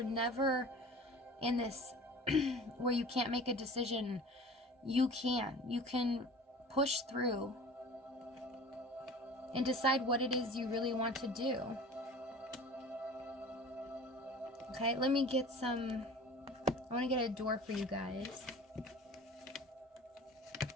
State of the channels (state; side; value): normal; both; correlation 0.41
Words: never in this where you can't make a decision. You can push through and decide what it is you really want to do. Okay, let me get I want to get a door for you guys.